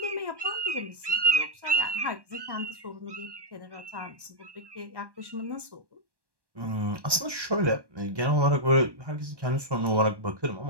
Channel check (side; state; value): left; late; 1.1 ms